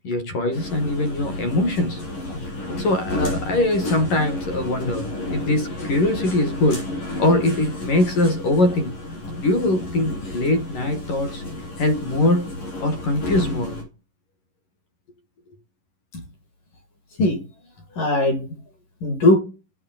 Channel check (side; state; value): right; late; 11 ms